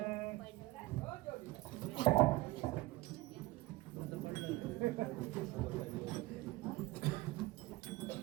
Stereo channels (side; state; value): left; quieter; 19.4 dB